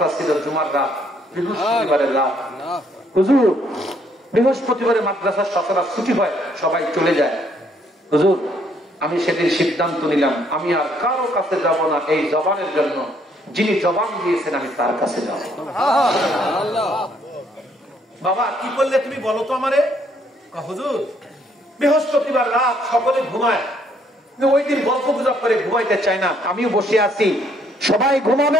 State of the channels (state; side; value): normal; both; correlation 0.67